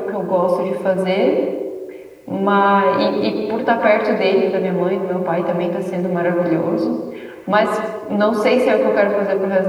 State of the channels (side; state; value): both; identical; correlation 1.00